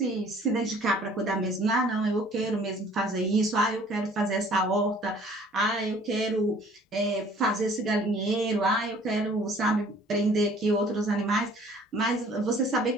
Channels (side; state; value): both; normal; correlation 0.54